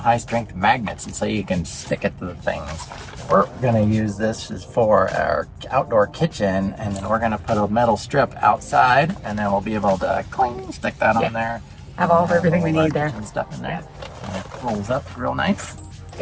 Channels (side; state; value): both; identical; correlation 1.00